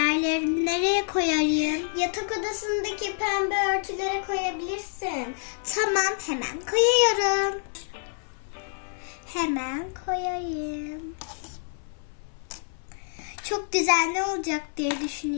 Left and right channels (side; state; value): right; silent; 60 dB below the other